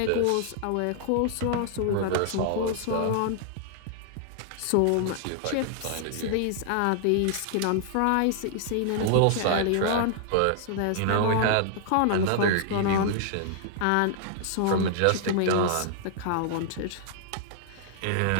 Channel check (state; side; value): different; both; correlation -0.01